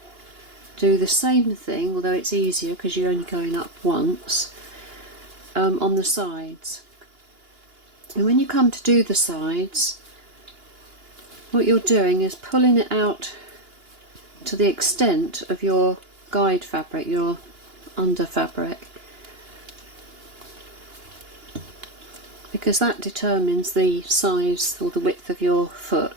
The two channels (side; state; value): left; late; 2.9 ms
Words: do the same thing, although it's easier because you're only going up once, on the sides. And when you come to do the sides, what you're doing is pulling it out to the extent of your guide fabric, your under fabric, because that determines the size or the width of your